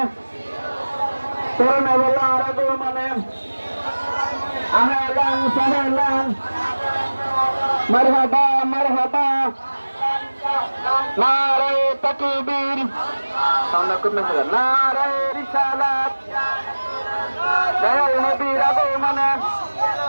করোনাওয়ালার আগমনে আহলান সাহলান মারহাবা মারহাবা নারায়ে তাকবীর নারায়ে রিসালাত দয়াল নবীর আগমনে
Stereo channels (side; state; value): both; inverted; correlation -1.00